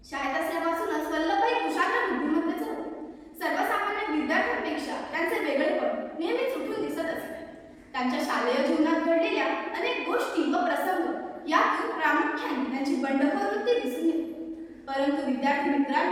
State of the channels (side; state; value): both; identical; correlation 1.00